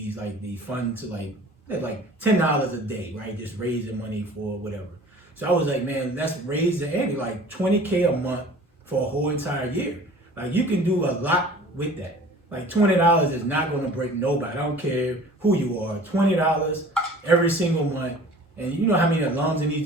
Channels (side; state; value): both; normal; correlation 0.45